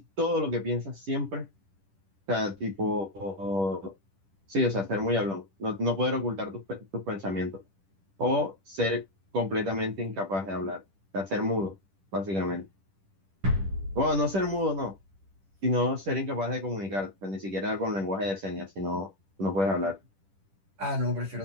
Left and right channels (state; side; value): late; left; 10 ms